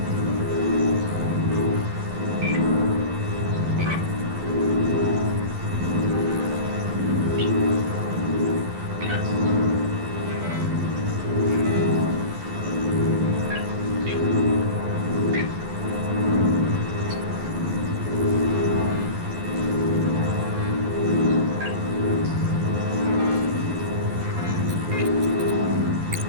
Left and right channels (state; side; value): late; left; 11 ms